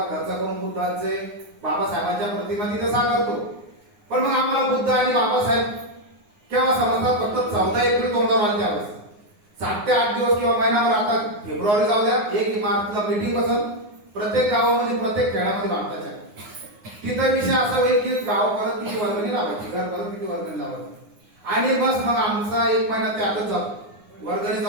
खर्च करून बुद्धांचे, बाबासाहेबांच्या प्रतिमा तिथे साकारतो. पण मग आम्हाला बुद्ध आणि बाबासाहेब केव्हा समजतात? फक्त 14 एप्रिल तोंडावर आले त्यावेळेस. 7 ते 8 दिवस किंवा महिनाभर, आता फेब्रुवारी जाऊ द्या, 1 मार्चला मीटिंग बसल प्रत्येक गावामध्ये, प्रत्येक खेड्यामध्ये भारताच्या. तिथं विषय असा होईल की गाव परत किती वर्गणी लावायची, घर परत किती वर्गणी लावायची, आणि बस मग आमचा 1 महिना त्यातच जातो. वर्गणी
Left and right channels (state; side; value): late; left; 9.7 ms